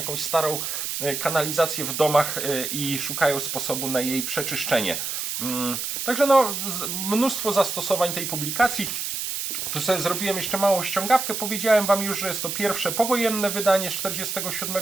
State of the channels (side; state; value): right; noise; hiss, 3 dB below the sound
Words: starą kanalizację w domach i szukają sposobu na jej przeczyszczenie. Także no, mnóstwo zastosowań tej publikacji. Tu sobie zrobiłem jeszcze małą ściągawkę. Powiedziałem Wam już, że jest to pierwsze powojenne wydanie z